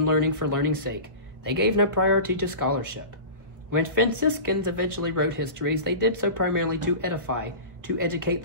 learning for learning's sake, they gave no priority to scholarship. When Franciscans eventually wrote histories, they did so primarily to edify, to educate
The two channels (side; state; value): left; late; 1.4 ms